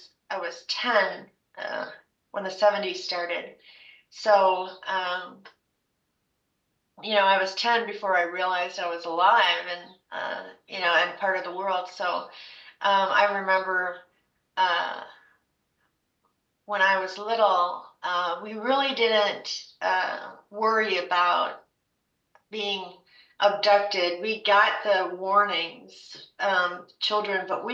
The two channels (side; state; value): both; identical; correlation 1.00